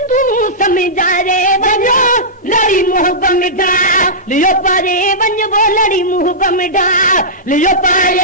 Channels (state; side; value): normal; both; correlation -0.15